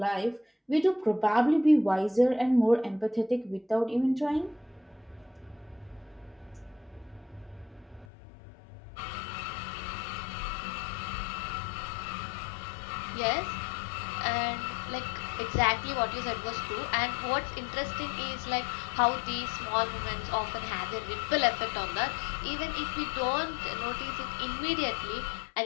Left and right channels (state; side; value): drops out; right; at 8.1 s